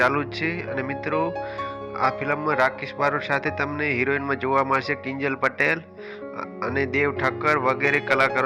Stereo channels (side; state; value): both; identical; correlation 1.00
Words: જ છે અને મિત્રો આ ફિલ્મમાં રાકેશ બારોટ સાથે તમને હિરોઈનમાં જોવા મળશે કિંજલ પટેલ અને દેવ ઠક્કર વગેરે